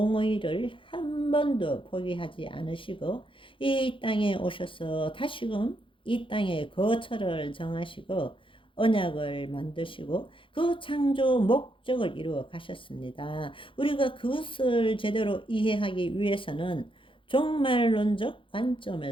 한 번도 포기하지 않으시고 이 땅에 오셔서 다시금 이 땅에 거처를 정하시고 언약을 만드시고 그 창조 목적을 이루어 가셨습니다. 우리가 그것을 제대로 이해하기 위해서는 종말론적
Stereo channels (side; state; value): right; late; 0.25 ms